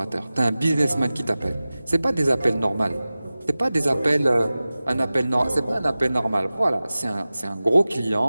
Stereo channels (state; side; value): inverted; both; correlation -0.97